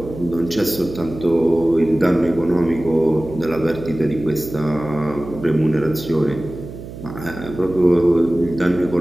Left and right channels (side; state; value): right; noise; hum, 13 dB below the sound